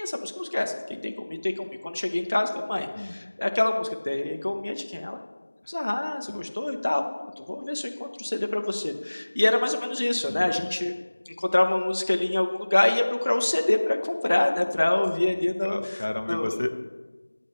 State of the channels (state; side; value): inverted; both; correlation -1.00